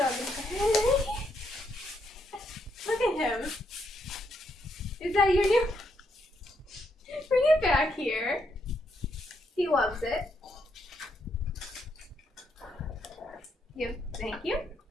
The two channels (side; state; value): both; normal; correlation 0.77